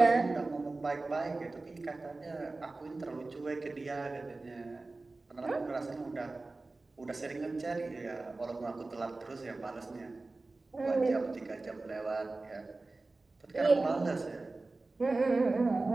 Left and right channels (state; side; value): quieter; left; 3.3 dB